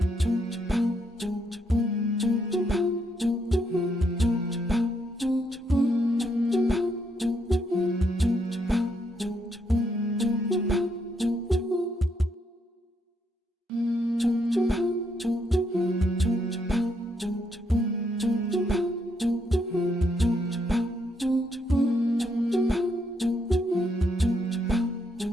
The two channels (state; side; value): normal; both; correlation 0.76